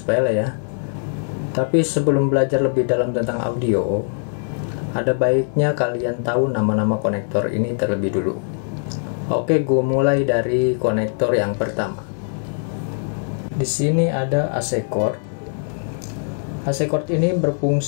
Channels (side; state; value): right; silent; digital silence